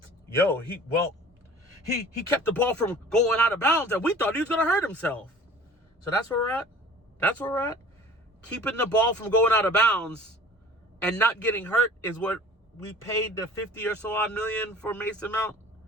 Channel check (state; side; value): normal; both; correlation 0.46